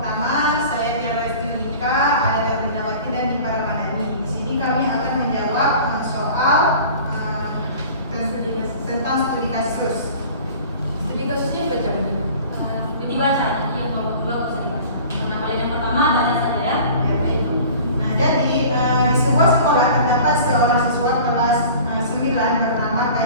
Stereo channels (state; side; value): inverted; both; correlation -0.43